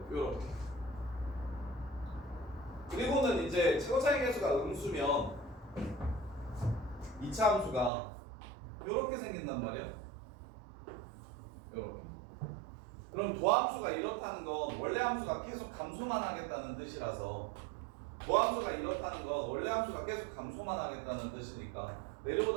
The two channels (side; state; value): left; drops out; at 7.9 s